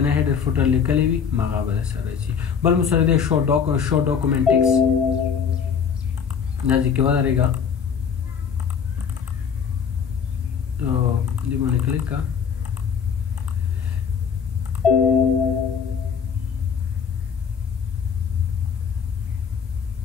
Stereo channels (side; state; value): right; quieter; 6.9 dB